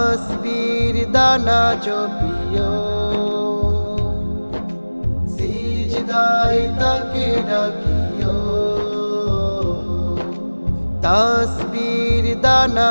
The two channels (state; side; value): inverted; both; correlation -1.00